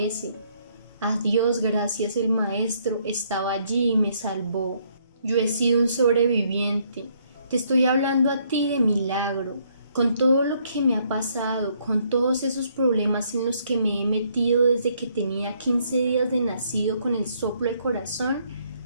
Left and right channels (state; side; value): inverted; both; correlation -0.69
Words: A Dios gracias, el maestro estaba allí y me salvó. Yo he sido un sobreviviente. Te estoy hablando a ti de milagro, con todo lo que me ha pasado, con todos esos problemas en los que me he metido desde que tenía 15 días de nacido con el soplo del corazón,